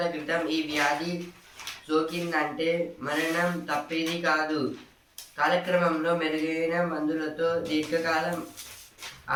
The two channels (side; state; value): both; identical; correlation 1.00